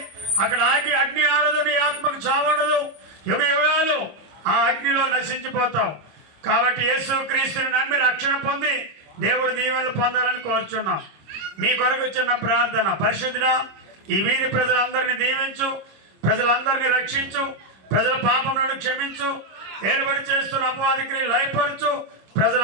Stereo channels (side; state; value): left; late; 26 ms